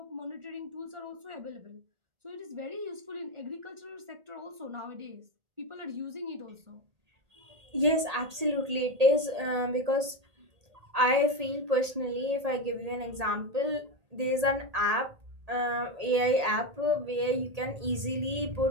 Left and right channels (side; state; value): left; late; 1.8 ms